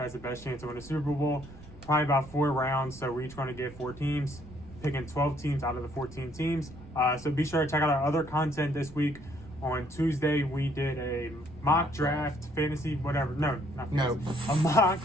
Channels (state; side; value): noise; right; rumble, 22 dB below the sound